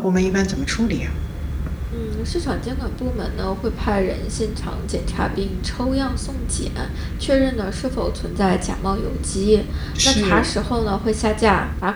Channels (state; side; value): identical; both; correlation 1.00